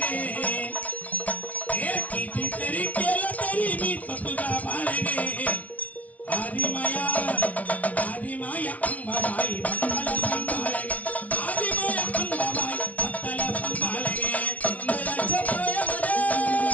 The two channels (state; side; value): late; right; 0.069 ms